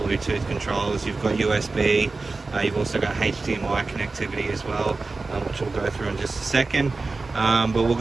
controls, you've got USB, you've also got HDMI connectivity as well, which we'll go through in just a second. But we'll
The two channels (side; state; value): left; quieter; 3.7 dB